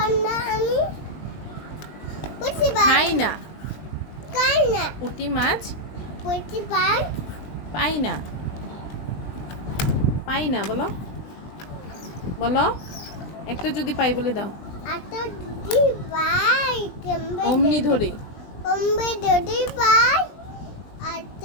খাই না। পুঁটি মাছ পাই না। পাই না বলো, বলো একটা যদি পাই বলে দাও। অমনি ধরে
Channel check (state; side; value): late; right; 20 ms